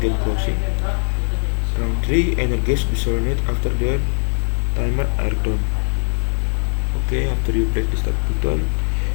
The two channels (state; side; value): silent; right; digital silence